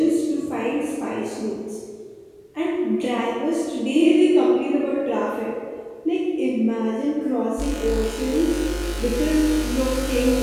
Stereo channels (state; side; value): identical; both; correlation 1.00